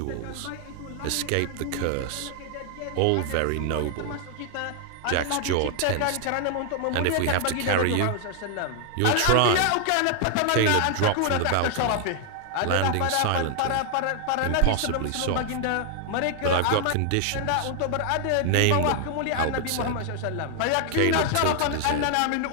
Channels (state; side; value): different; both; correlation 0.00